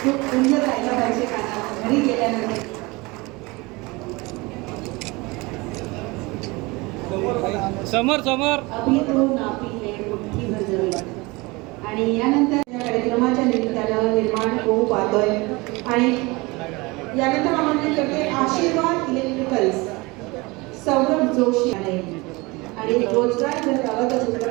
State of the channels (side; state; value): left; quieter; 24.2 dB